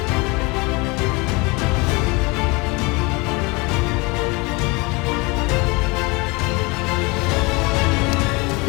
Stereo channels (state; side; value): quieter; right; 25.6 dB